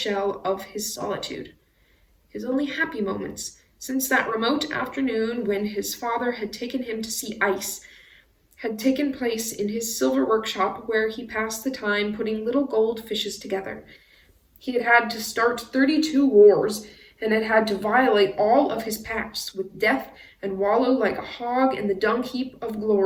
of his solitude. His only happy moments, since that remote afternoon when his father had taken him to see ice, had taken place in his silver workshop, where he passed the time putting little gold fishes together. He had had to start 32 wars, and had had to violate all of his pacts with death and wallow like a hog in the dung heap of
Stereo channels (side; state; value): both; identical; correlation 1.00